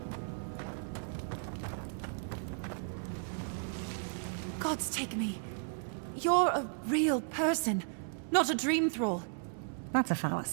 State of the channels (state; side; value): silent; left; 55 dB below the other